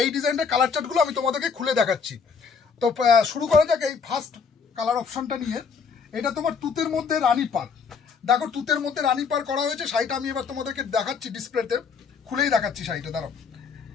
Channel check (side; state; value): right; quieter; 5.8 dB